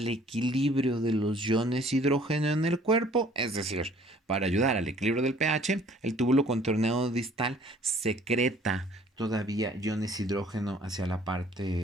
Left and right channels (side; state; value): both; normal; correlation 0.56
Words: equilibrio de los iones hidrógeno en el cuerpo, es decir, para ayudar al equilibrio del pH, el túbulo contorneado distal secreta todavía iones hidrógeno hacia la